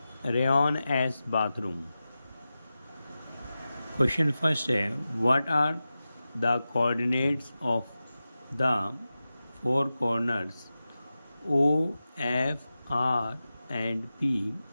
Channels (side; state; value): both; inverted; correlation -0.94